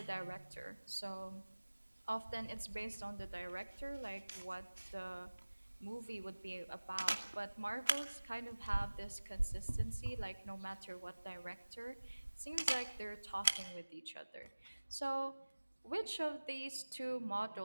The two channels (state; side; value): inverted; both; correlation -1.00